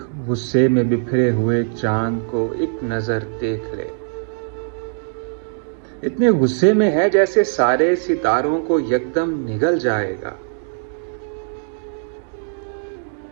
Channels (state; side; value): silent; left; digital silence